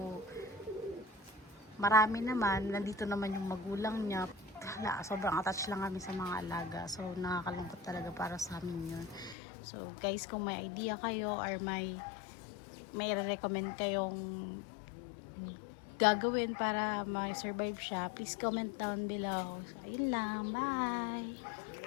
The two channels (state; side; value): drops out; right; at 9.3 s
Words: marami naman, nandito naman yung magulang niya. Hala, sobrang attached lang kami sa mga alaga. So, nakakalungkot talaga para sa amin yun. So, guys, kung may idea kayo or may recommend kayong gagawin para ma-survive siya, please comment down below. So, ayun lang. Bye!